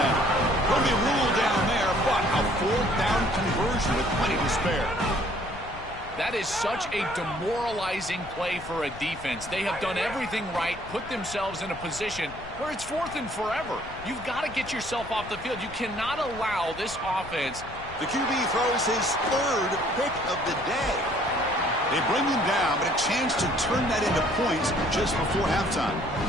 Will be ruled down there, but a 4th down conversion with plenty to spare. That is such a demoralizing play for a defense. They have done everything right, put themselves in a position where it's 4th and forever. You've got to get yourself off the field. You cannot allow this offense. The QB throws his 3rd pick of the day. They bring him down, but a chance to turn that into points just before halftime.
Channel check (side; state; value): left; noise; rumble, 16 dB below the sound